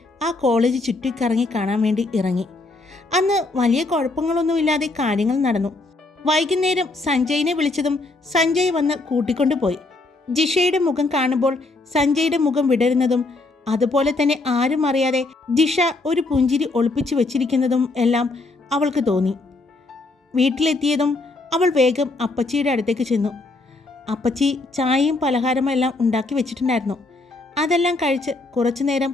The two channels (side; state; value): right; quieter; 3.2 dB